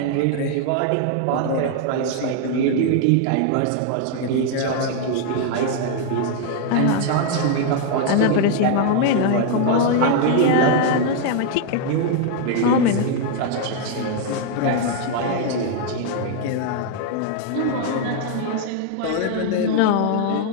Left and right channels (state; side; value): different; both; correlation 0.00